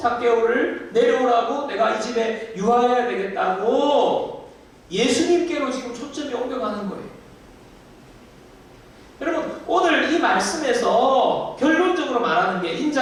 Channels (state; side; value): identical; both; correlation 1.00